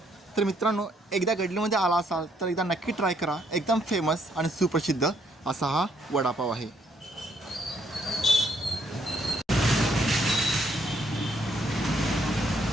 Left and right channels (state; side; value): normal; both; correlation 0.70